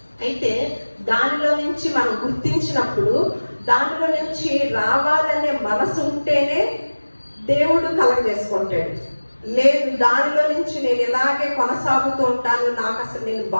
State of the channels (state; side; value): inverted; both; correlation -1.00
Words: అయితే దానిలో నుంచి మనం గుర్తించినప్పుడు దానిలో నుంచి రావాలనే మనసు ఉంటేనే దేవుడు కలగజేసుకుంటాడు. లేదు, దానిలో నుంచి నేను ఇలాగే కొనసాగుతూ ఉంటాను, నాకు అసలు నేను